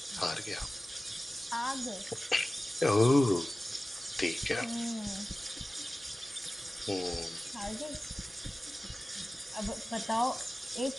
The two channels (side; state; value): both; normal; correlation 0.96